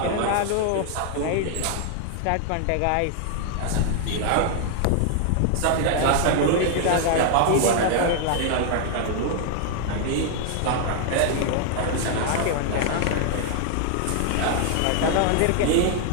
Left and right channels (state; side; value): different; both; correlation 0.00